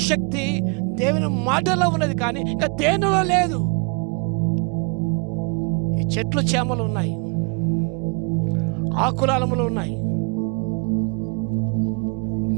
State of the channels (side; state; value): left; quieter; 34.9 dB